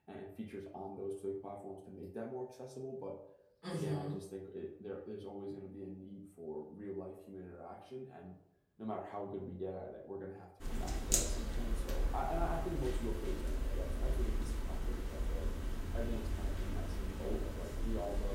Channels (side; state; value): both; identical; correlation 1.00